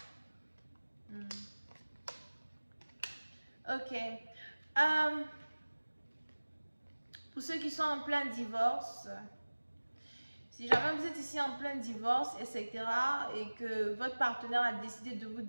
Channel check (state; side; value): inverted; both; correlation -1.00